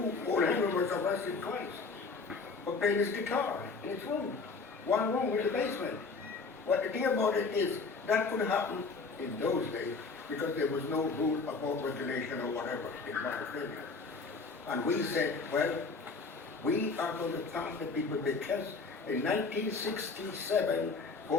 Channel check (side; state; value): right; quieter; 4.3 dB